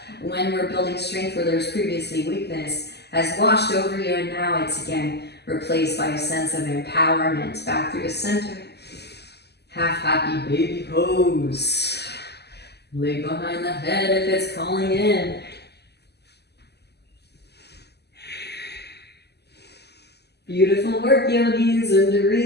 when we're building strength where there's previously weakness has washed over you, and now it's again replaced by a sense of empowerment. Back through the center. Half happy baby pose. Leg behind the head if it's calling in. Beautiful work, yogis, and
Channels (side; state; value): right; late; 0.49 ms